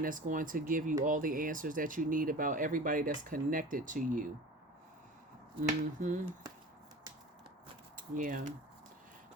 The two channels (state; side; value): normal; both; correlation 0.37